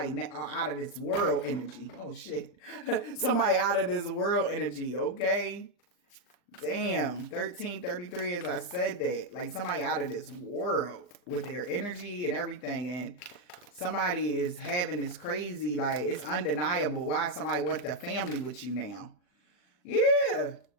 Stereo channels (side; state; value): right; late; 40 ms